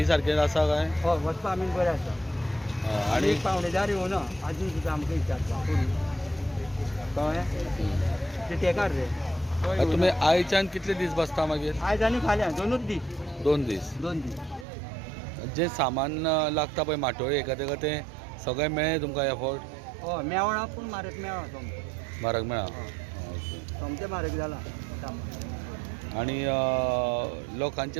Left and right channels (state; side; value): drops out; left; at 14.7 s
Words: सारकें आसा काय? हय वचपाक आमी बरें आसा आनी एक पावणेदार येवना आजून सुद्दां आमकां विचारता कळ्ळें ते तेकार रे. तुमी आयच्यान कितले दीस बसता मागीर? आयज आनी फाल्यां दोनूच दीस. 2 दीस. 2 दीस. जे सामान लागता पळय माटोळी एका तें सगळें मेळ्ळें तुमकां एफोर्ट? हय मेवळा पूण म्हारग मेवळा सोमतें. म्हारग मेळ्ळा? सोमतें म्हारग जाला. आनी